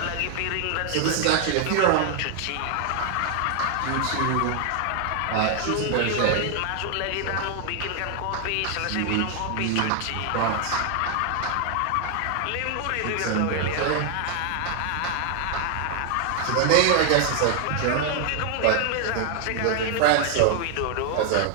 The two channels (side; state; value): both; different; correlation 0.00